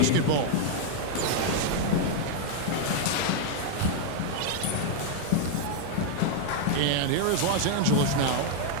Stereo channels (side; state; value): both; different; correlation 0.00